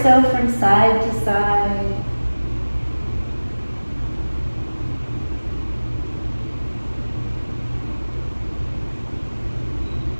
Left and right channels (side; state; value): both; inverted; correlation -1.00